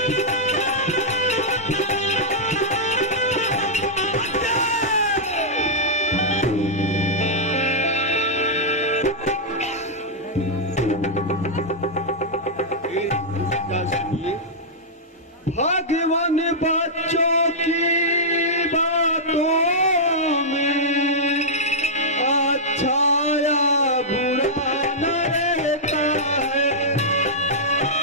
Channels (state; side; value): normal; both; correlation -0.09